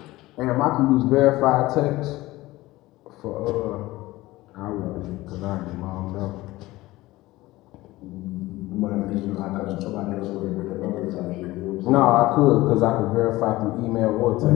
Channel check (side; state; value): right; quieter; 18.5 dB